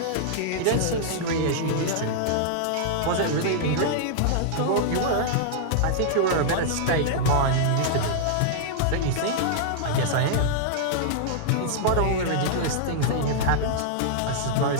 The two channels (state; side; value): different; both; correlation -0.01